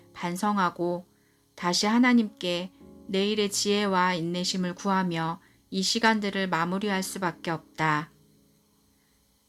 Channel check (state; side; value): identical; both; correlation 1.00